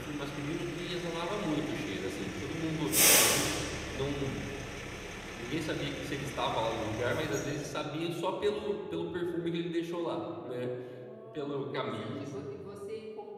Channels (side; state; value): both; identical; correlation 1.00